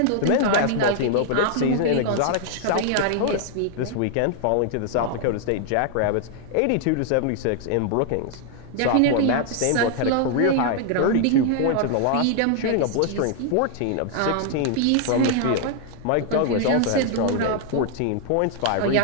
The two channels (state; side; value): different; both; correlation 0.00